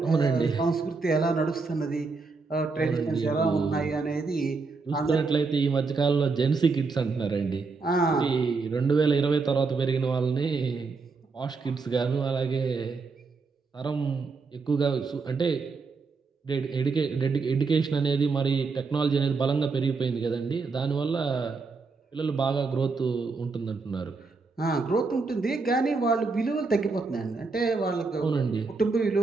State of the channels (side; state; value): left; quieter; 4.3 dB